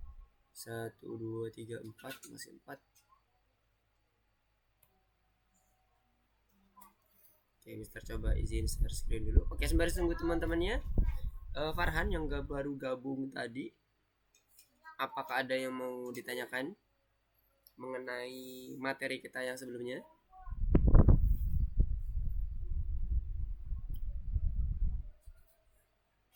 1, 2, 3, 4. Masih 4. Oke, Mister coba izin share screen dulu. Oke, sembari tunggu teman-temannya. Farhan yang baru gabung tadi, apakah ada yang mau ditanyakan mengenai materi kita yang sebelumnya?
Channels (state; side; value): identical; both; correlation 1.00